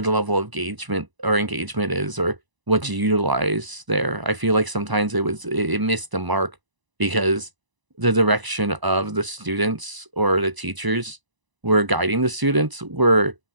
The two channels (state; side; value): late; left; 1.0 ms